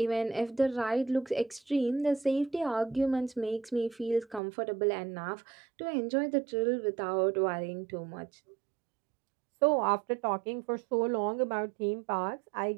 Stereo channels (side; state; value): left; drops out; at 4.4 s